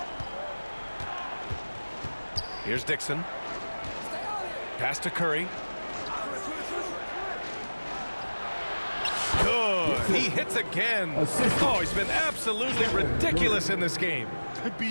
Here's Dixon. Pass to Curry. Good. He hits again. Oh, he's been absolutely ridiculous in this game.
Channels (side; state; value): both; inverted; correlation -1.00